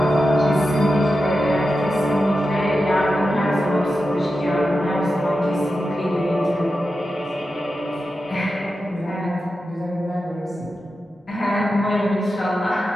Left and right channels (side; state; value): both; normal; correlation 0.90